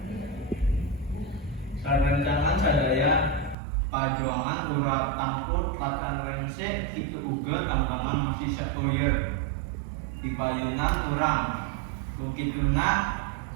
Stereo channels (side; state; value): left; drops out; at 3.6 s